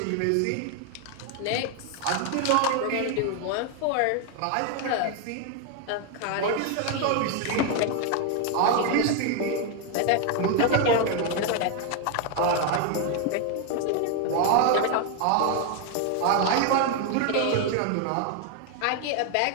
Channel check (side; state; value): both; different; correlation 0.01